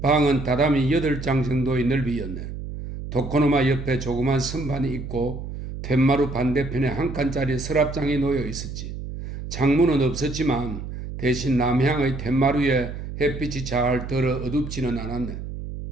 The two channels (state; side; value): noise; right; hum, 8 dB below the sound